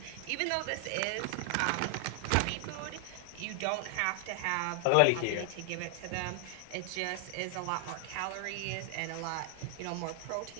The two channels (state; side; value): different; both; correlation 0.00